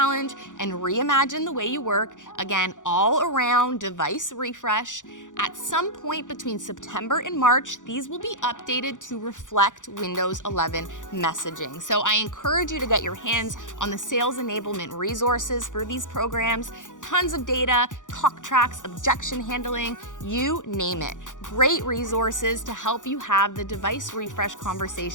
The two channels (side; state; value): right; late; 0.87 ms